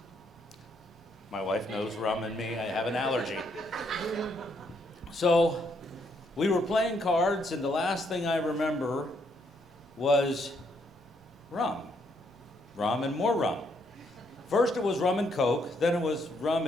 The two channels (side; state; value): both; normal; correlation 0.73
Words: My wife knows rum and me. I have an allergy. So we were playing cards, and the last thing I remember was rum. Rum and more rum. First it was rum and Coke, then it was rum